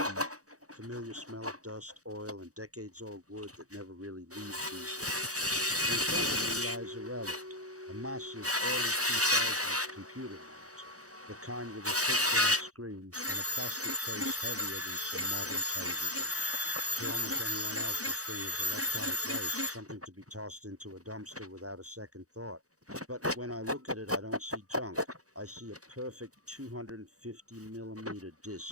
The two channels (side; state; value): left; late; 0.66 ms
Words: deep, familiar smell of dust, oil, and decades-old wood that never really leaves these days. In front of me lies a relic, a massive early 2000s computer monitor, the kind with a thick glass screen and a plastic case heavier than some modern televisions. To almost anyone else, this thing is electronic waste, something to be tossed into a dumpster without a second thought. But when I look at it, I don't see junk. I see a perfect 250 millimeter